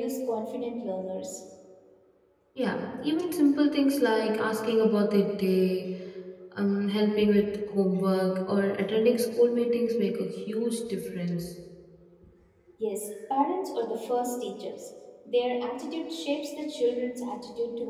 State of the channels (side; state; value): both; identical; correlation 1.00